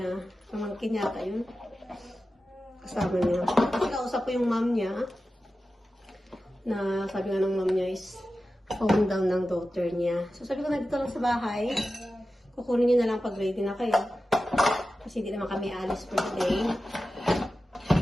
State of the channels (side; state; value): both; normal; correlation 0.93